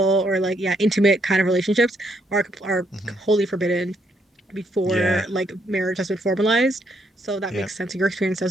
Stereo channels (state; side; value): normal; both; correlation 0.74